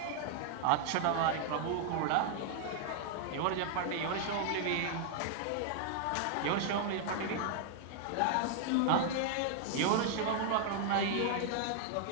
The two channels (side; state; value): both; different; correlation 0.00